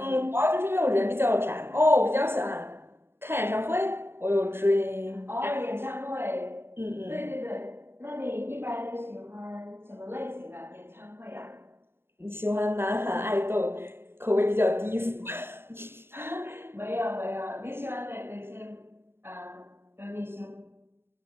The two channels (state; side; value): late; left; 0.11 ms